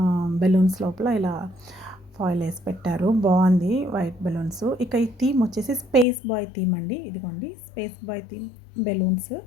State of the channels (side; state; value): right; drops out; at 6.1 s